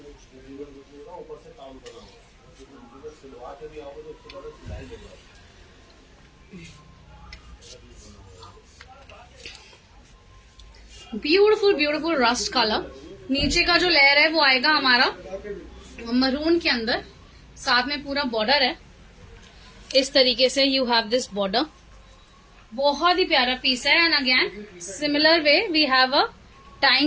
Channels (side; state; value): both; identical; correlation 1.00